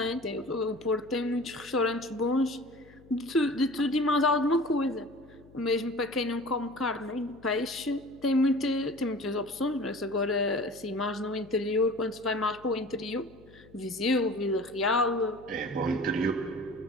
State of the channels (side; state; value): left; noise; hum, 24 dB below the sound